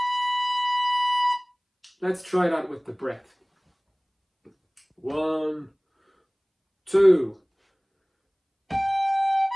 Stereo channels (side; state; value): both; identical; correlation 1.00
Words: Let's try that with the breath. 1, 2.